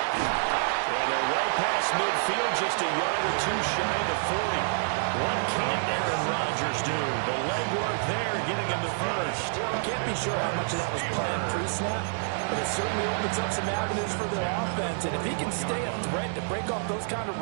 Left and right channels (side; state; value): left; silent; digital silence